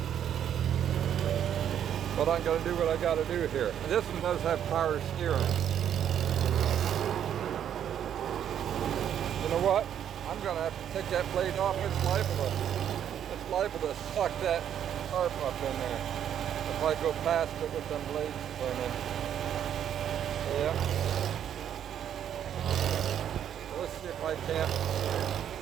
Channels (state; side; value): quieter; left; 9.6 dB